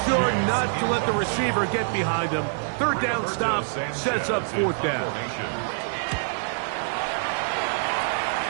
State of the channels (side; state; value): left; silent; digital silence